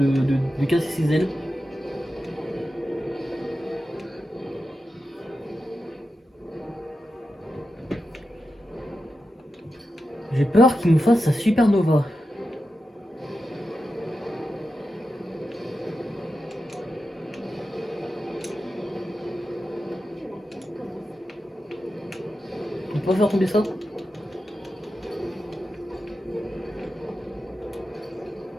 casser ses ailes. J'ai peur qu'il nous fasse sa supernova. On va faire tomber ça.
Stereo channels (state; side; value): normal; both; correlation 0.90